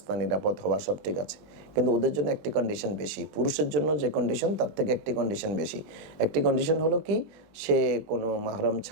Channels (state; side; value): late; left; 20 ms